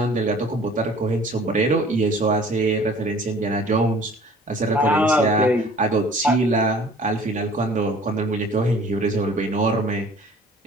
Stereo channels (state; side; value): normal; both; correlation 0.50